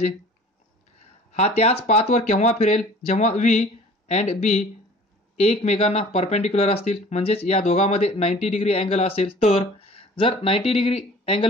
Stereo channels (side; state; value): both; normal; correlation 0.47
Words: हा त्याच पाथवर केव्हा फिरेल, जेव्हा व्ही अँड बी एकमेकांना परपेंडिक्युलर असतील, म्हणजेच या दोघांमध्ये 90 डिग्री अँगल असेल. तर जर 90 डिग्री